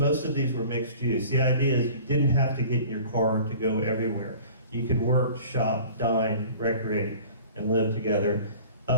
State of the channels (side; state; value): both; inverted; correlation -0.45